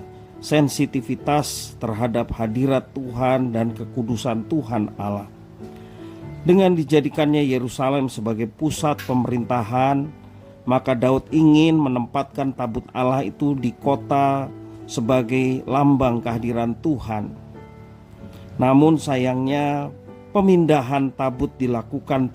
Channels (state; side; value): identical; both; correlation 1.00